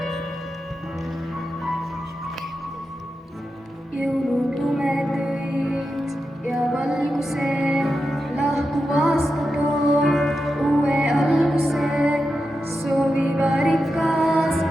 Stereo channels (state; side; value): normal; both; correlation 0.89